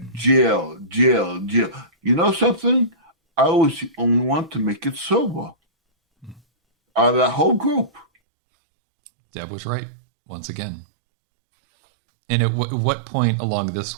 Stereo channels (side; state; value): left; drops out; at 8.1 s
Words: jail. You know something? I was the only one to make it sober out of that whole group. Deb was right, once again. And at what point along this